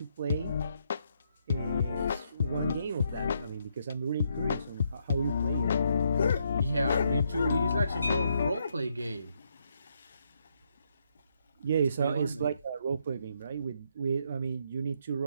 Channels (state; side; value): inverted; both; correlation -0.76